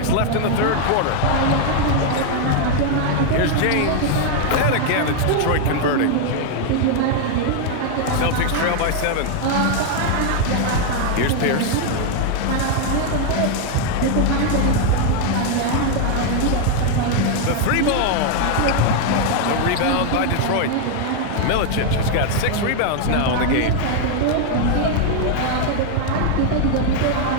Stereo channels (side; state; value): both; different; correlation 0.00